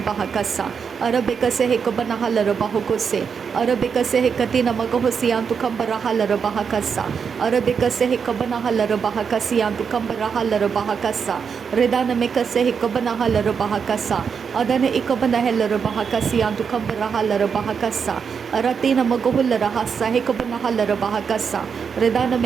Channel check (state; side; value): quieter; left; 6.4 dB